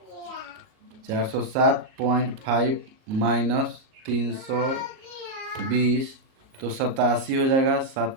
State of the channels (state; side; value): late; left; 38 ms